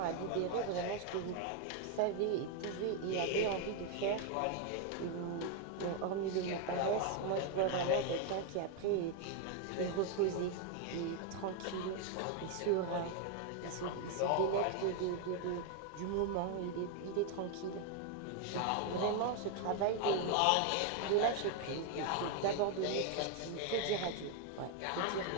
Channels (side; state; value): both; different; correlation 0.01